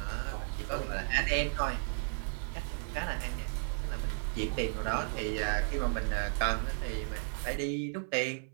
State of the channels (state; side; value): silent; left; 55 dB below the other